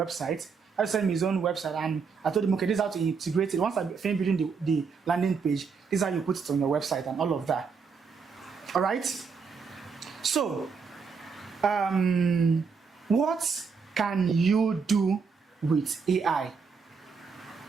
He had to send me his own website, and I told him, okay, this is how to integrate it. Once I finish building the landing page, this is how you put it on your website and all of that. All right. So, what can you do with AI?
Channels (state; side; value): quieter; left; 5.5 dB